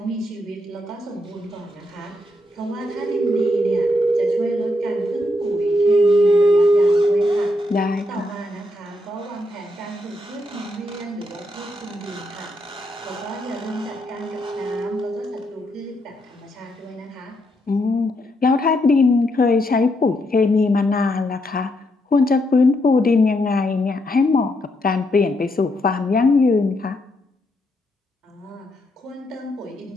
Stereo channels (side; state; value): both; normal; correlation 0.78